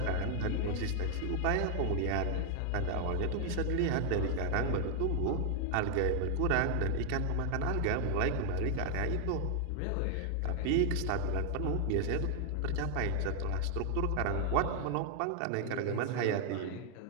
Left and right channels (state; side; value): different; both; correlation 0.00